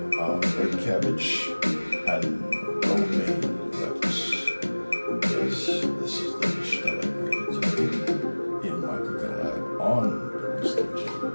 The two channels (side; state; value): both; inverted; correlation -1.00